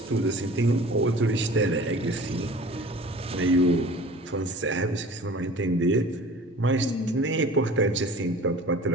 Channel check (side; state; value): both; normal; correlation 0.43